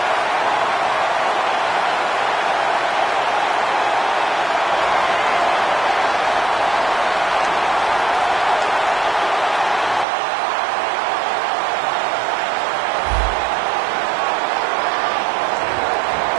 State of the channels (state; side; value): drops out; left; at 10.1 s